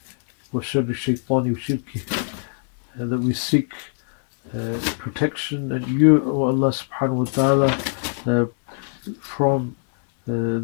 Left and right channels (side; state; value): right; silent; digital silence